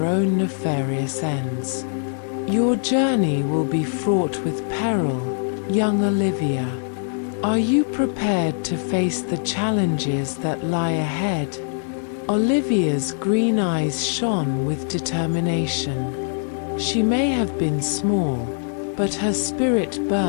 own nefarious ends. Your journey will be fraught with peril, young Olivia. Are you prepared to face the challenges that lie ahead? Olivia's green eyes shone with determination. She may have been small, but her spirit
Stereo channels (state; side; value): silent; right; digital silence